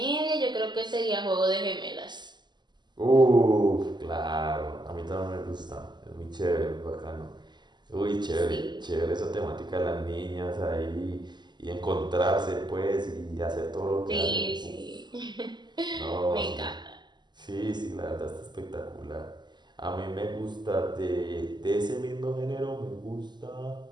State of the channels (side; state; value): left; late; 0.21 ms